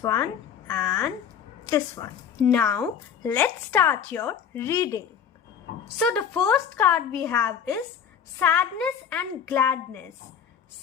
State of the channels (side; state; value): right; quieter; 7.9 dB